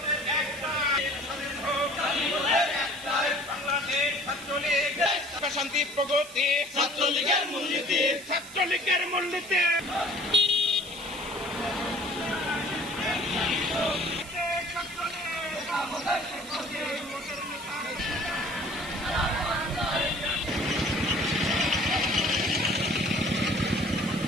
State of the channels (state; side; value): noise; right; hiss, 16 dB below the sound